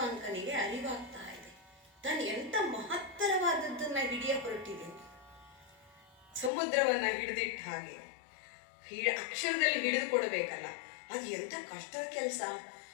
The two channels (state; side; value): drops out; right; at 6.5 s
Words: ಅರಿವಾಗ್ತಾ ಇದೆ, ತಾನು ಎಂತ ಮಹತ್ತರವಾದದ್ದನ್ನ ಹಿಡಿಯ ಹೊರಟಿದ್ದೇನೆ. ಸಮುದ್ರವನ್ನ ಹಿಡಿದಿಟ್ಟ ಹಾಗೆ ಅಕ್ಷರದಲ್ಲಿ ಹಿಡಿದು ಕೊಡಬೇಕಲ್ಲ, ಅದು ಎಂತ ಕಷ್ಟದ ಕೆಲಸ.